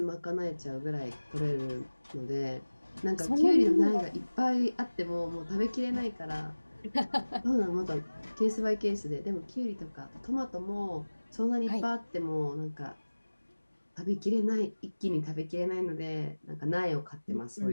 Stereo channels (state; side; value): inverted; both; correlation -1.00